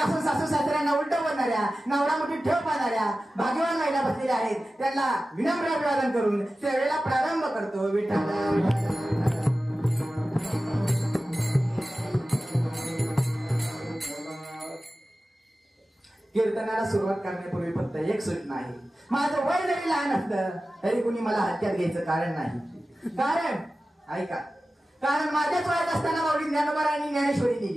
सासू सासऱ्यांना उलट बोलणाऱ्या, नवरा मोठी ठेव पाहणाऱ्या भाग्यवान महिला बसलेल्या आहेत. त्यांना विनम्र अभिवादन करून सेवेला प्रारंभ करतो विठ्ठल. कीर्तनाला सुरुवात करण्यापूर्वी फक्त एक सूचना आहे. माझं वय जरी लहान असलं तरी कुणी मला हत्यात घ्यायचं कारण नाही. कारण ऐका, कारण माझ्याच वयात असताना माऊली ज्ञानोबारायांनी ज्ञानेश्वरी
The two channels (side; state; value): both; normal; correlation 0.95